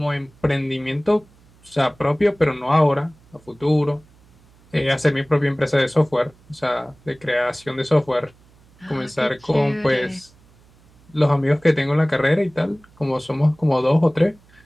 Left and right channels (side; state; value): right; noise; hum, 29 dB below the sound